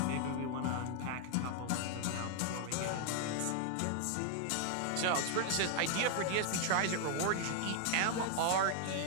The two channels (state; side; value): different; both; correlation 0.00